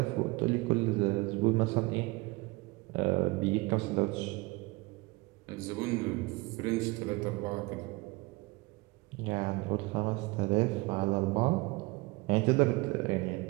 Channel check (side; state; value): left; quieter; 24.0 dB